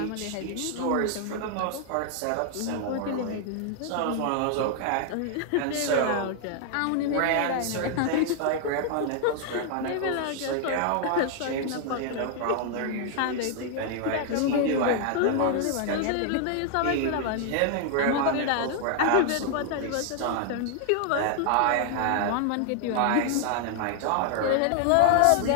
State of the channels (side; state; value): both; different; correlation 0.00